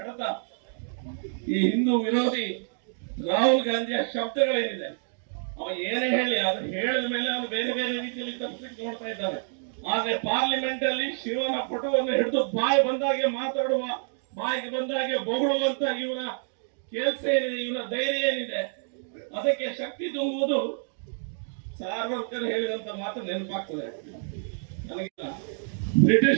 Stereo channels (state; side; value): silent; left; digital silence